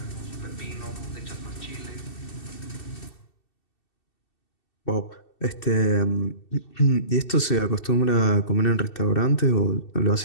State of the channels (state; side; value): late; right; 2.7 ms